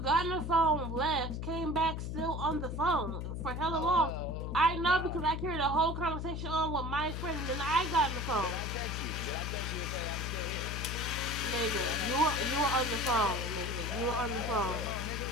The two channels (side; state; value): left; noise; hum, 4 dB below the sound